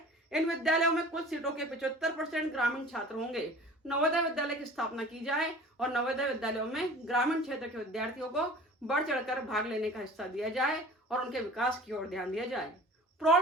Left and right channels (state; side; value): normal; both; correlation 0.42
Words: इन विद्यालयों में कुल सीटों के 75% ग्रामीण छात्र होंगे। नवोदय विद्यालय की स्थापना की जाए और नवोदय विद्यालयों में ग्रामीण क्षेत्र के विद्यार्थियों को बढ़ चढ़कर भाग लेने का हिस्सा दिया जाए और उनके विकास की ओर ध्यान दिया जाए।